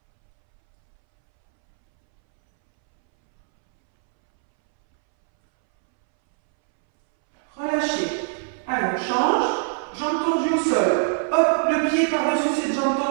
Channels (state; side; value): silent; left; 64 dB below the other